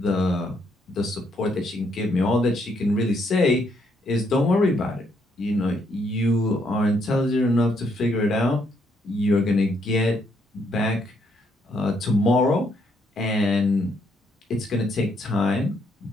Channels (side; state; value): both; normal; correlation 0.73